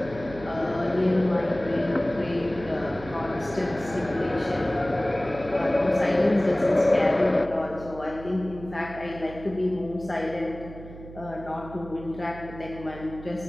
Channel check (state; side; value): noise; right; hum, 15 dB below the sound